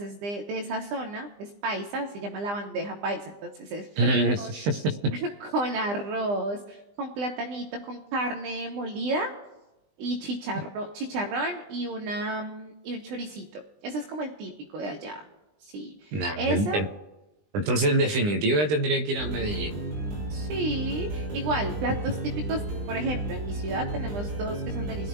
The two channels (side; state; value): left; late; 20 ms